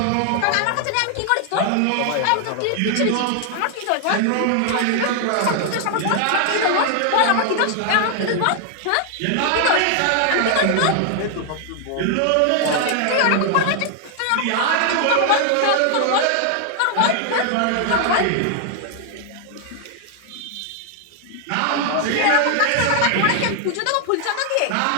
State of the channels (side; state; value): both; different; correlation 0.00